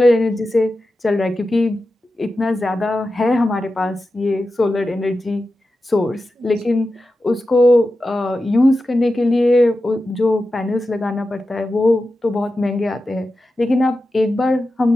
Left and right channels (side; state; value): both; normal; correlation 0.92